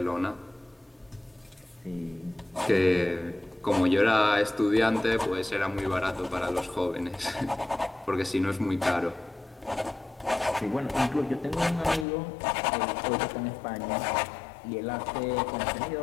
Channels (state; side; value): drops out; right; at 12.1 s